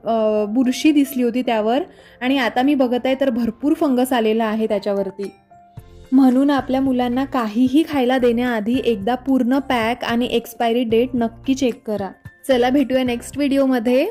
बुरशी दिसली होती त्यावर. आणि आता मी बघत आहे तर भरपूर फंगस आलेला आहे त्याच्यावरती. म्हणून आपल्या मुलांना काहीही खायला देण्याआधी एकदा पूर्ण पॅक आणि एक्सपायरी डेट नक्की चेक करा. चला भेटूया नेक्स्ट व्हिडिओमध्ये.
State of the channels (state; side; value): identical; both; correlation 1.00